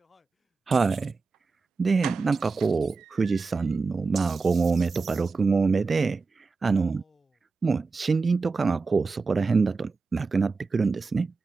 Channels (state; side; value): quieter; left; 4.3 dB